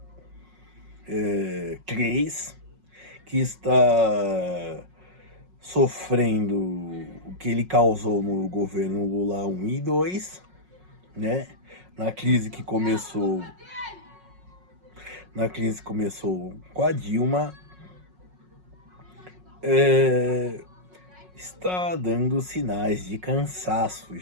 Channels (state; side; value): late; left; 5.5 ms